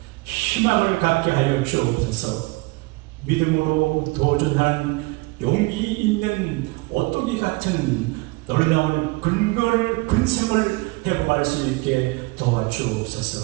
희망을 갖게 하여 주옵소서. 믿음으로 도전하는 용기 있는 오뚜기 같은 놀라운 근성을 회복할 수 있게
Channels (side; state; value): left; quieter; 24.8 dB